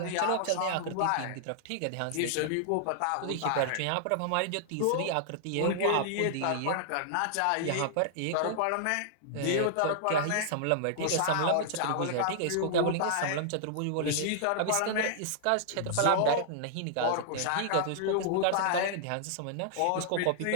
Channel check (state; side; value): different; both; correlation -0.01